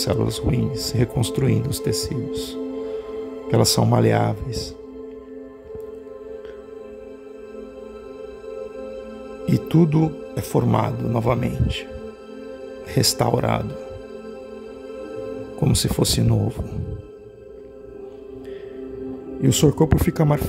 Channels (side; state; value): both; identical; correlation 1.00